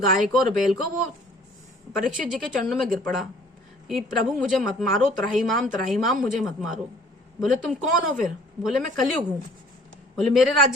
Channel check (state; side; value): normal; both; correlation 0.54